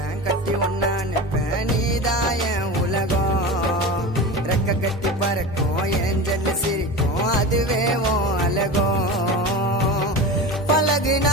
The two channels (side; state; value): both; normal; correlation 0.28